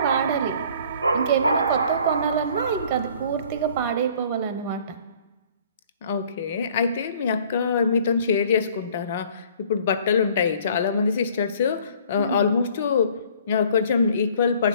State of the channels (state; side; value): inverted; both; correlation -0.54